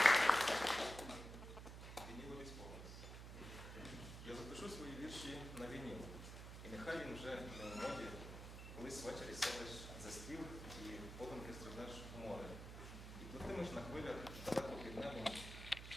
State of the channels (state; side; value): noise; right; hum, 10 dB below the sound